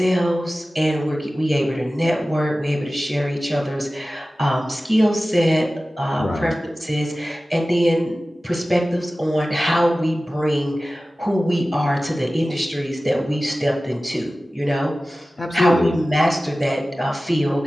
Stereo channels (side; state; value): both; normal; correlation 0.96